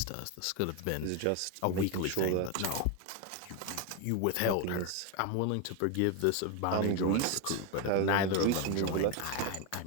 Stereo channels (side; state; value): both; different; correlation 0.02